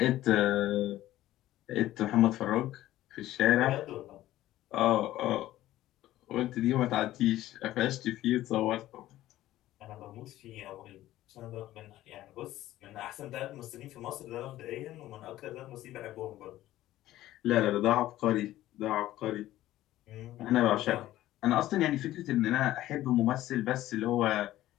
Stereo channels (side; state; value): right; quieter; 14.7 dB